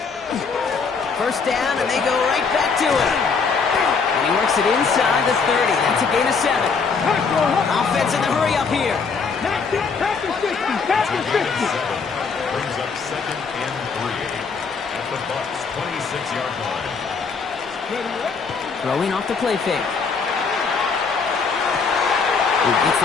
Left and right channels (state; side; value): quieter; right; 5.2 dB